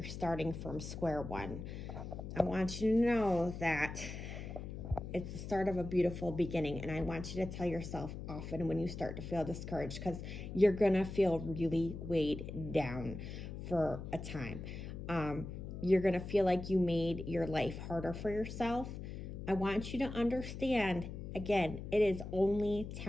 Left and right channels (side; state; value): left; noise; hum, 8 dB below the sound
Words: starting from square one. I want you to know that it's the start of a beautiful beginning. And I want you to tell yourself often when you start to feel discouraged, because you're going to feel really weighed down for a time. You're going to feel like you made your life harder for yourself. I want you to understand, again, it is only